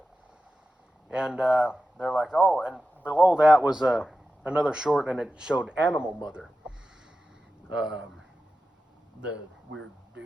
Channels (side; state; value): both; normal; correlation 0.92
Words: And they're like, oh, and below that was another short, and it showed Animal Mother, the weird dude.